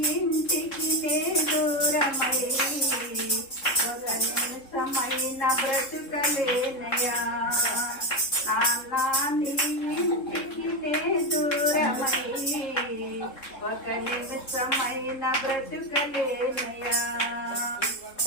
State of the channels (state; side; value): late; right; 3.7 ms